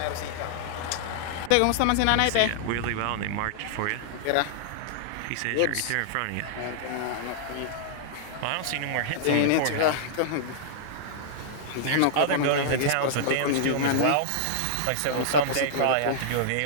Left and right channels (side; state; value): both; different; correlation -0.01